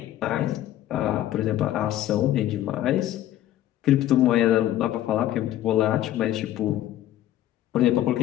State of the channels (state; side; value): quieter; right; 13.0 dB